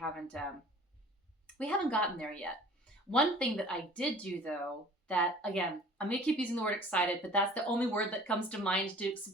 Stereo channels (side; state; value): both; normal; correlation 0.47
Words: gotten there yet. One thing that I did do though, that again, I'm going to keep using the word excited, but that's the only word that comes to mind to